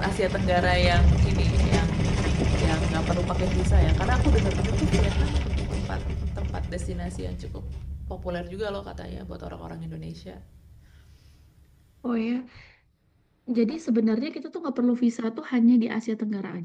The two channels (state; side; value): identical; both; correlation 1.00